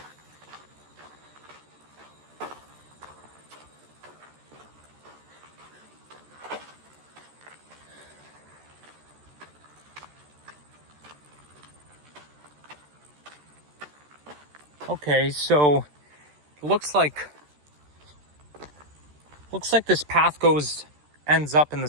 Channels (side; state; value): left; late; 13 ms